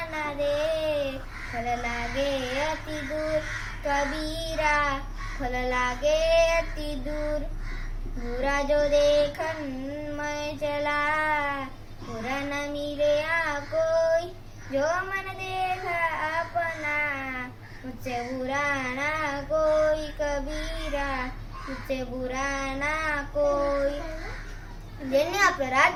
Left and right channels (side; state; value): both; identical; correlation 1.00